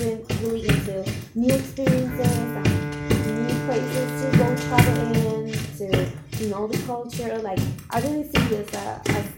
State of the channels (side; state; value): both; identical; correlation 1.00